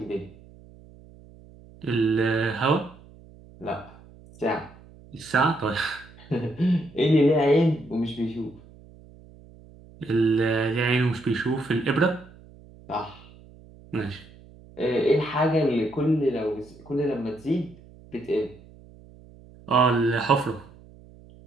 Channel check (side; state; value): right; noise; hum, 23 dB below the sound